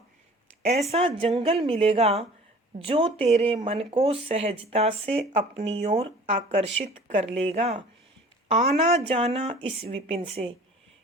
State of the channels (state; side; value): normal; both; correlation 0.47